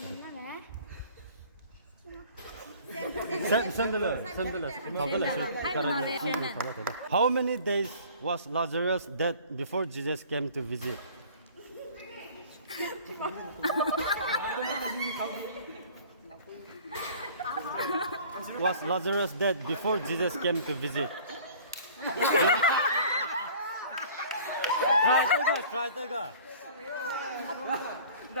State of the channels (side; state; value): both; inverted; correlation -0.48